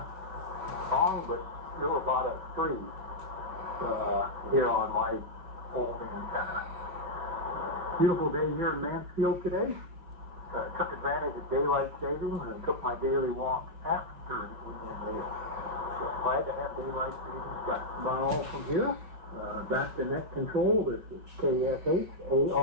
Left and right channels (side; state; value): left; late; 5.4 ms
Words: but still about a 3 here on my old antenna. Beautiful day here in Mansfield today. Took advantage of daylight savings and took my daily walk after the evening meal. So glad to have daylight savings back. Now from here, back to net control. This is